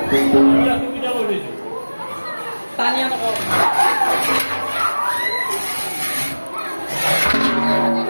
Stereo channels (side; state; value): both; inverted; correlation -1.00